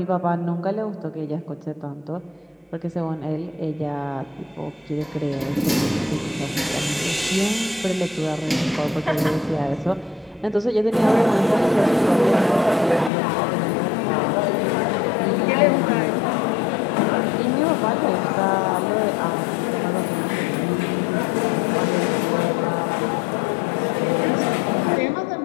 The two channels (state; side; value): drops out; right; at 13.1 s